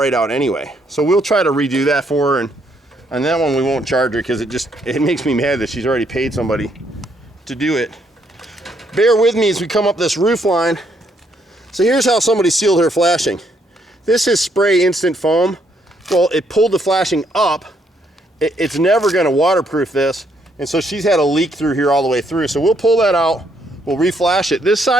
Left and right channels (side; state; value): both; normal; correlation 0.72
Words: out anyway. So we'll try to redo that for her, and on that one we won't charge her because it makes me mad that she's already paid somebody to do it. Bear with me as we come up this roof line. So here's how somebody sealed her flashing. This is spray instant foam. Well, it pulled the flashing up. It's never gonna waterproof this, and so she's had a leak through here all the way through. So we'll pull that out, we'll reflash it. This